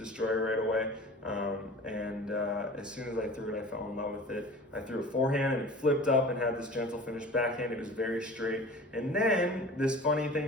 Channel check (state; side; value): normal; both; correlation 0.39